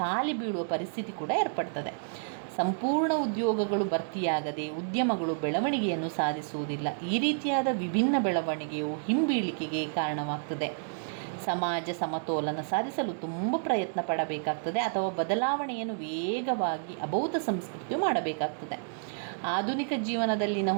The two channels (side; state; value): left; silent; digital silence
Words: ಬೀಳುವ ಪರಿಸ್ಥಿತಿ ಕೂಡ ಏರ್ಪಡ್ತದೆ. ಸಂಪೂರ್ಣ ಉದ್ಯೋಗಗಳು ಭರ್ತಿಯಾಗದೆ ಉದ್ಯಮಗಳು ಬೆಳವಣಿಗೆಯನ್ನು ಸಾಧಿಸುವುದಿಲ್ಲ. ಈ ರೀತಿಯಾದ ವಿಭಿನ್ನ ಬೆಳವಣಿಗೆಯು ಹಿಂಬೀಳಿಕೆಗೆ ಕಾರಣವಾಗ್ತದೆ. ಸಮಾಜ ಸಮತೋಲನ ಸಾಧಿಸಲು ತುಂಬ ಪ್ರಯತ್ನ ಪಡಬೇಕಾಗ್ತದೆ ಅಥವಾ ಬದಲಾವಣೆಯನ್ನು ವೇಗವಾಗಿ ಅಬೌದ್ಧ ಸಂಸ್ಕೃತಿಯು ಮಾಡಬೇಕಾಗ್ತದೆ. ಆಧುನಿಕ ಜೀವನದಲ್ಲಿನ